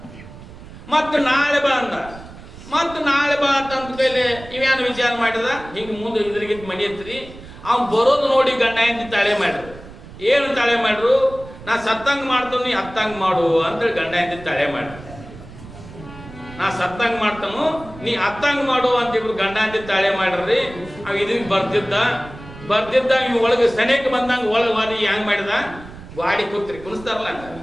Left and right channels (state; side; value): noise; right; rumble, 17 dB below the sound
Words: ಮತ್ತೆ ನಾಳೆ ಬಾ ಅಂದ. ಮತ್ತೆ ನಾಳೆ ಬಾ ಅಂತ ಕೈಲಿ ಇವ್ಯಾನು ವಿಚಾರ ಮಾಡಿದ. ಹಿಂಗೆ ಮುಂದೆ ಇದ್ರಿಗೆ ಮನಿ ಎತ್ರಿ ಅವ್ನು ಬರೋದು ನೋಡಿ ಗಂಡ ಹೆಂಡತಿ ತಾಳೆ ಮಾಡ್ರು. ಏನು ತಾಳೆ ಮಾಡ್ರು, ನಾ ಸತ್ತಂಗ್ ಮಾಡ್ತಾನು ನೀ ಹತ್ತಂಗ್ ಮಾಡು ಅಂತೇಳಿ ಗಂಡ ಹೆಂಡತಿ ತಾಳೆ ಮಾಡ್ರು. ನಾ ಸತ್ತಂಗ್ ಮಾಡ್ತಾನು ನೀ ಹತ್ತಂಗ್ ಮಾಡು ಅಂತ ಇಬ್ರು ಗಂಡ ಹೆಂಡತಿ ತಾಳೆ ಮಾಡ್ರಿ. ಅವ್ ಇದ್ರಿಗೆ ಬರ್ತಿದ್ದ ಇವ್ ಒಳಗೆ ಸನೇಕ್ ಬಂದಂಗ ಒಳಗೆ ವಾದಿ ಹೆಂಗ್ ಮಾಡಿದ, ಗಾಡಿ ಕುಣಿಸ್ತಾರಲ್ಲ